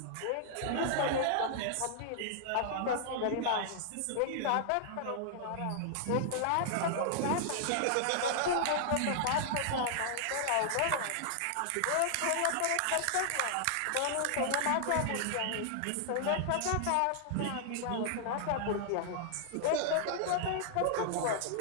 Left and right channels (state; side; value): different; both; correlation -0.01